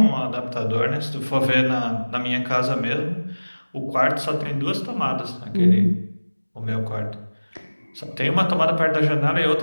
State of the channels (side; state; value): both; inverted; correlation -1.00